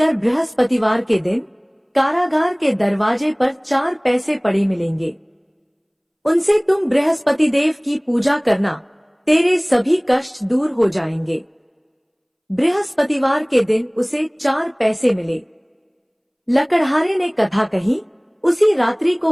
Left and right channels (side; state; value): both; identical; correlation 1.00